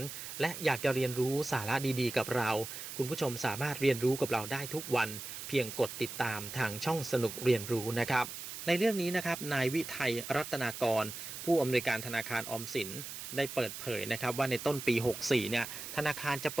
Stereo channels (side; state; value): right; noise; hiss, 9 dB below the sound